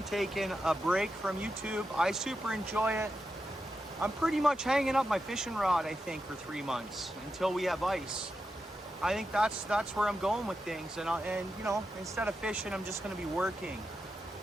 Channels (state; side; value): normal; both; correlation 0.88